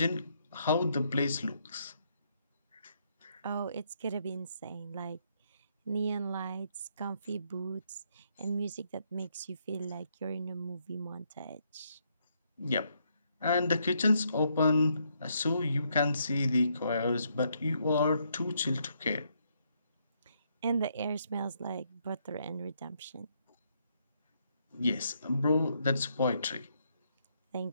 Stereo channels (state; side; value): inverted; both; correlation -0.74